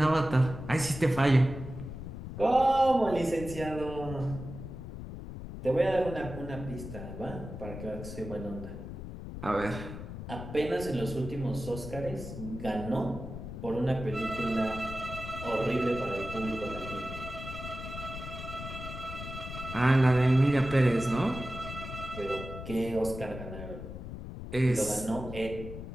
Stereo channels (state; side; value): noise; left; rumble, 9 dB below the sound